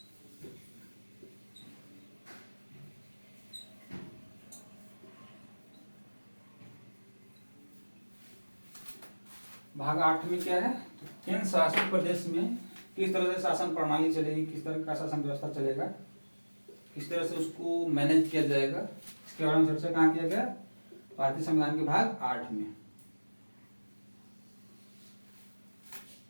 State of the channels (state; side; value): inverted; both; correlation -1.00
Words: भाग 8 में क्या है? तो केंद्र शासित प्रदेश में किस तरह से शासन प्रणाली चलेगी, किस तरह का शासन व्यवस्था चलेगा, किस तरह से उसको मैनेज किया जाएगा, इसके बारे में चर्चा कहाँ किया गया? भारतीय संविधान के भाग 8 में।